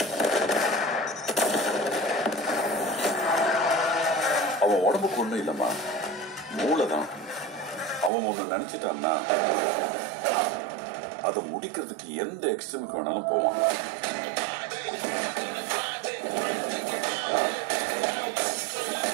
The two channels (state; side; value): drops out; left; at 8.1 s